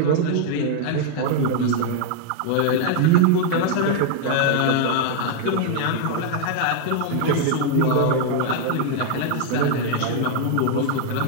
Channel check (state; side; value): different; both; correlation 0.00